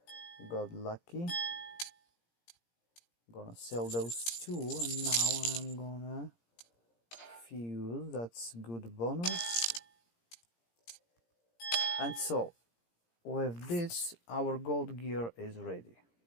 Got lucky. Gonna sell those 2, and now I'm gonna fuse. That's good bonus. And so with this, our gold gear is ready.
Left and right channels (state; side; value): late; right; 17 ms